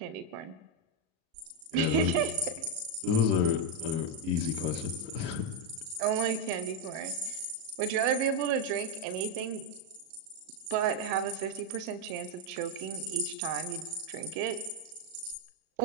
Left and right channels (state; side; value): late; left; 37 ms